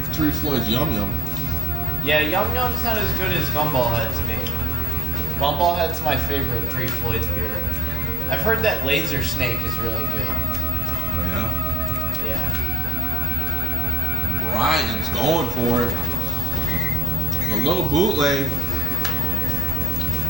3 Floyds Yum Yum. Yeah, Yum Yum's not as good as Gumball Head to me. Gumball Head's my favorite Three Floyds beer. I've heard that Laser Snake is really good. Oh, yeah? Yeah. Brian's going for it. A little bootleg.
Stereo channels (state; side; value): normal; both; correlation 0.76